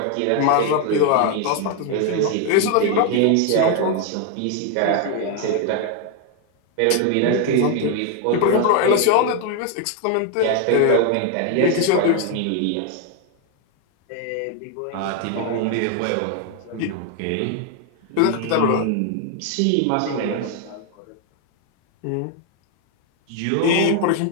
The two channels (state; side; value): different; both; correlation 0.01